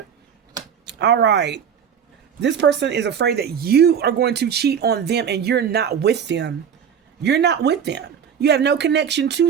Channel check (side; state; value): left; quieter; 7.8 dB